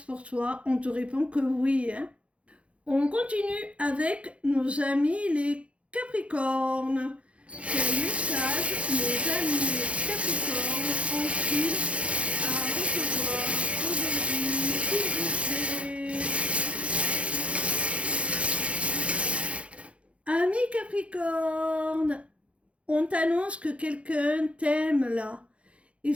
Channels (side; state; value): left; late; 0.062 ms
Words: toi, on te répond que oui. Hein. On continue avec nos amis les Capricornes. Quel message nos amis les Capricornes ont-ils à recevoir aujourd'hui, s'il vous plaît? Amis Capricorne, on t'annonce que quelqu'un t'aime là. Et